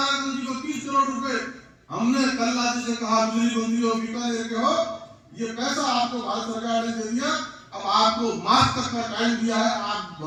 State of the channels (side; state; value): both; identical; correlation 1.00